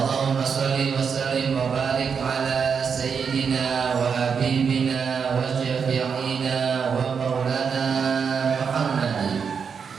shalli wa sallim wa barik ala sayyidina wa habibina wa syafi'ina wa maulana Muhammadin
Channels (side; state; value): left; quieter; 6.3 dB